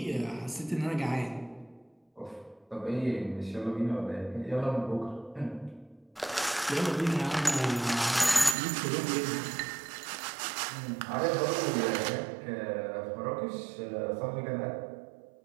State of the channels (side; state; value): left; drops out; at 8.6 s